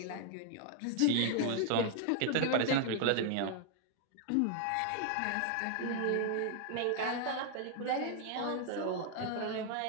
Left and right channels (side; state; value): both; different; correlation 0.00